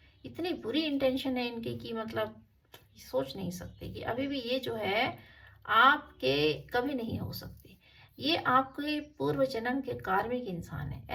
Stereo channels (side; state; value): both; identical; correlation 1.00